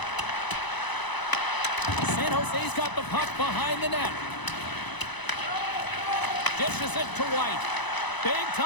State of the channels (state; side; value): late; right; 1.0 ms